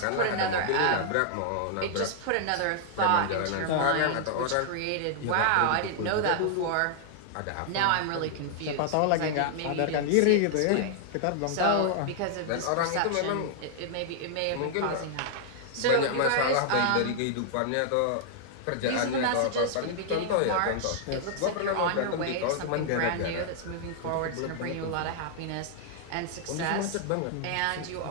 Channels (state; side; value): different; both; correlation -0.01